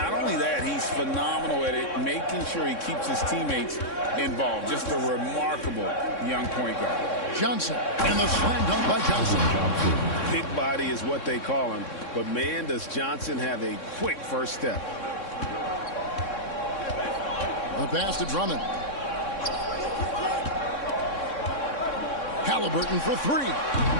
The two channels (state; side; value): late; right; 3.6 ms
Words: only that, he's phenomenal at it, making sure he keeps his teammates involved. Just a remarkable young point guard. Johnson, and the slam dunk by Johnson. Big body is what they call him, but man, does Johnson have a quick first step. The pass to Drummond. Halliburton for three.